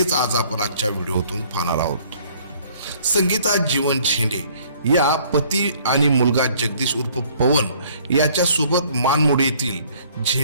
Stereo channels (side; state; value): both; inverted; correlation -0.58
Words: आज आपण आजच्या व्हिडिओतून पाहणार आहोत. संगीता जीवन झेंडे या पती आणि मुलगा जगदीश उर्फ पवन याच्यासोबत मानमोडी येथील